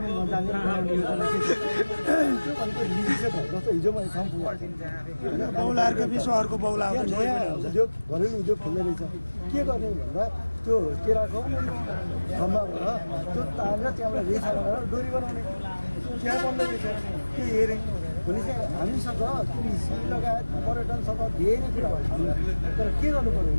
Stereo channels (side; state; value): both; inverted; correlation -1.00